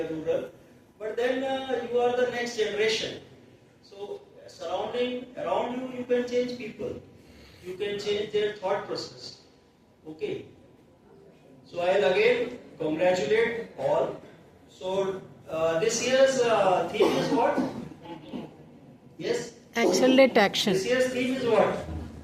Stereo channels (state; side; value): identical; both; correlation 1.00